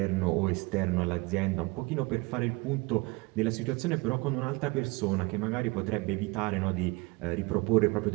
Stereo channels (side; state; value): left; quieter; 25.3 dB